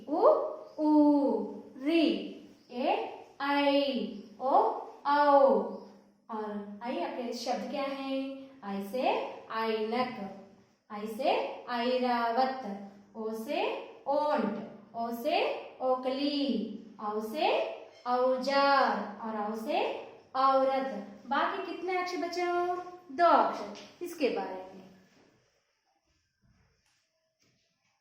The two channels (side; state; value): both; identical; correlation 1.00